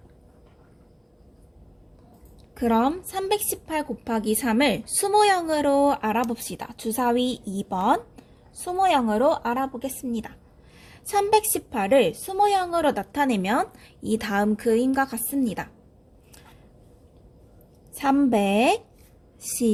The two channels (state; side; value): identical; both; correlation 1.00